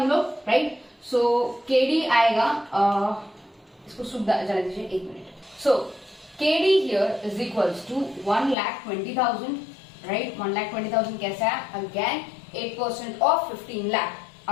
हम लोग, राइट। सो केडी आएगा, इसको सुख जाने दीजिए 1 minute. So KD here is equals to 1,20,000, right? 1,20,000 कैसा है? Again 8% of 15 lakh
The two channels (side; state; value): right; drops out; at 8.6 s